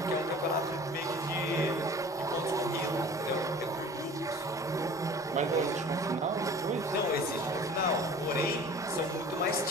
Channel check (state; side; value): normal; both; correlation 0.44